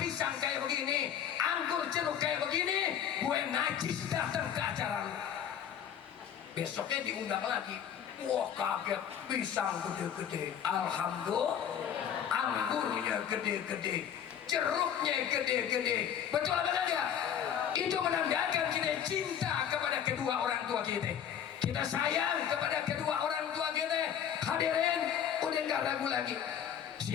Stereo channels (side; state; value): right; quieter; 9.0 dB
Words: kayak begini, anggur jeruk kayak begini, gue najis datang ke acara lu. Besoknya diundang lagi. Wah kaget, pisang gede-gede, alhamdulillah. Anggurnya gede-gede, jeruknya gede-gede. Betul apa enggak? Itu menandakan kita cinta kepada kedua orang tua kita. Kita sayang kepada kedua orang tua kita. Hadirin, udah nggak ragu lagi.